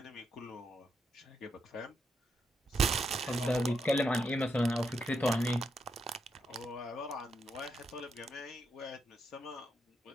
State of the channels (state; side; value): normal; both; correlation 0.81